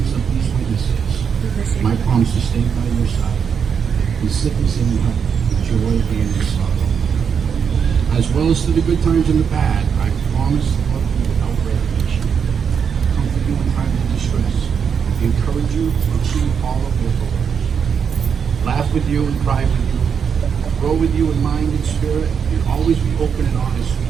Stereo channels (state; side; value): quieter; left; 6.9 dB